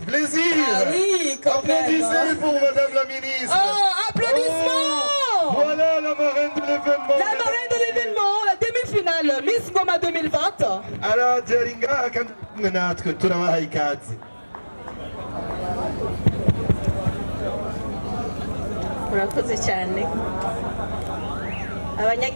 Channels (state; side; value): inverted; both; correlation -1.00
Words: plaisir. Ah oui, quand même. Applaudissez pour madame la ministre. Oh, applaudissements. Oh, voilà la marraine de l'événement. La marraine de l'événement, la demi-finale, Miss Ngoma 2020. Alors, Jeringa, quand nous travaillons murakoze cyane